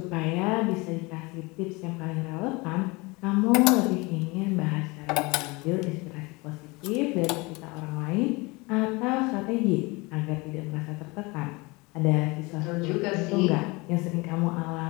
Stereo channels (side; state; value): right; quieter; 25.2 dB